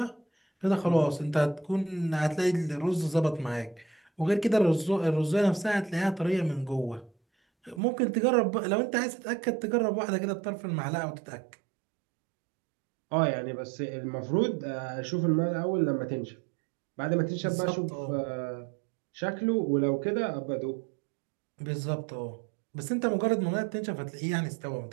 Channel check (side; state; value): left; drops out; at 7.8 s